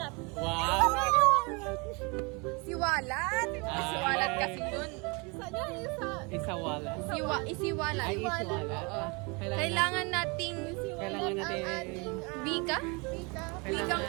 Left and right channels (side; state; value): left; quieter; 29.9 dB